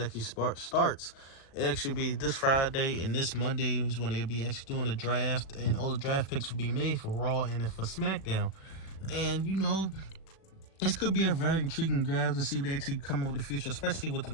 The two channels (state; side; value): late; right; 37 ms